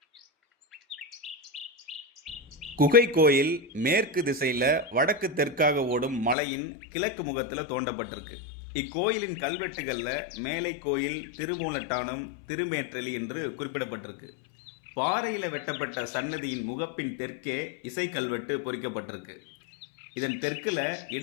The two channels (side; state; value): right; drops out; at 6.4 s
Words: குகை கோயில் மேற்கு திசையில் வடக்கு தெற்காக ஓடும் மலையின் கிழக்கு முகத்தில் தோண்டப்பட்டிருக்கு. இக்கோயிலின் கல்வெட்டுகளில் மேலை கோயில், திருமூலட்டானம், திருமேற்றலி என்று குறிப்பிடப்பட்டிருக்கு. பாறையில் வெட்டப்பட்ட சன்னதியின் முகப்பின் தெற்கே இசை கல்வெட்டு பொறிக்கப்பட்டிருக்கு. இதன் தெற்கில்